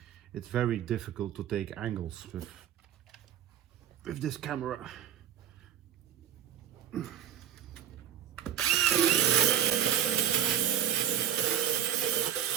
it's very difficult to take angles with this camera.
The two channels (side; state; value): left; quieter; 10.1 dB